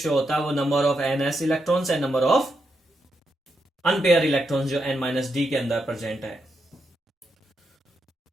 होता है वो number of n s electrons and number of unpaired electrons जो एन माइनस डी के अंदर प्रेजेंट है।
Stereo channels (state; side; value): normal; both; correlation 0.83